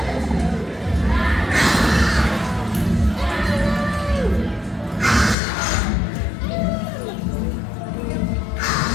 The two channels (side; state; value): right; drops out; at 5.4 s